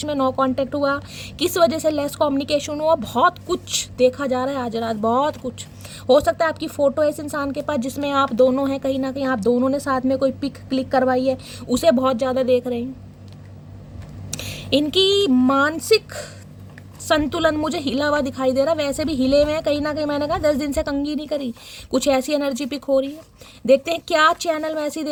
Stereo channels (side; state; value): both; identical; correlation 1.00